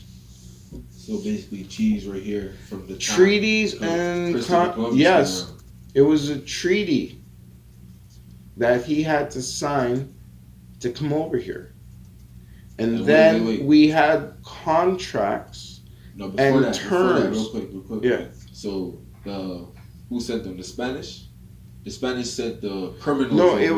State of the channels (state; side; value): identical; both; correlation 1.00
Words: So basically, cheese right here from the time Treaties Christopher and Columbus yes, came around. it was a treaty that he had to sign to come over here. And And then wait. we had contracts. No, before and that, terms. real quick. Yeah. So who sent them? The Spanish. The Spanish sent the criminals. No,